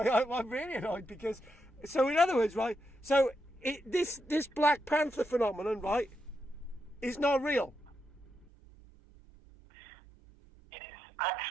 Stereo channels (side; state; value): left; drops out; at 8.5 s